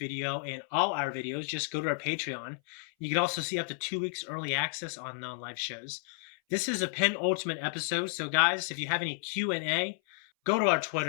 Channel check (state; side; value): silent; right; 57 dB below the other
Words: and all our videos, just go to our Patreon. You can also see up to 2 weeks early access on non-live shows. This is a penultimate episode, so guys, if you have any Q&A, go to our